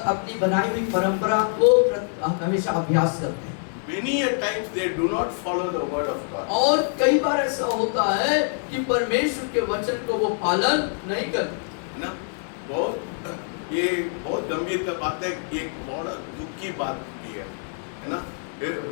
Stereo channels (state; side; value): silent; right; 62 dB below the other